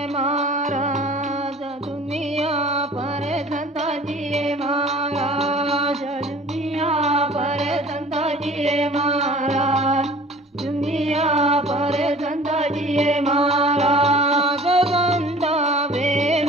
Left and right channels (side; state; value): both; normal; correlation 0.46